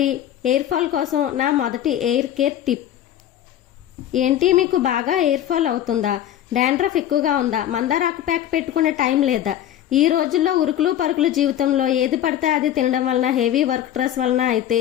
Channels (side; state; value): right; quieter; 11.4 dB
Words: ఎయిర్ ఫాల్ కోసం నా మొదటి ఎయిర్ కేర్ టిప్ ఏంటి? మీకు బాగా ఎయిర్ ఫాల్ అవుతుందా? డాండ్రఫ్ ఎక్కువగా ఉందా? మందారాకు ప్యాక్ పెట్టుకునే టైం లేదా? ఈ రోజుల్లో ఉరుకులు పరుకులు జీవితంలో ఏది పడితే అది తినడం వలన, హెవీ వర్క్ స్ట్రెస్ వలన అయితే